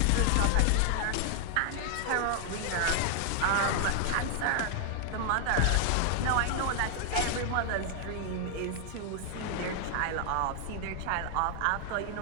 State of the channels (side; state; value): both; different; correlation 0.00